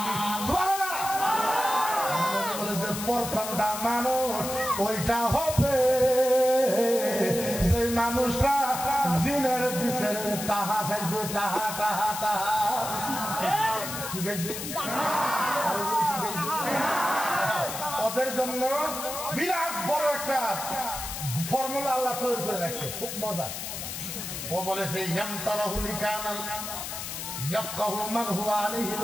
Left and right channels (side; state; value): left; noise; hiss, 6 dB below the sound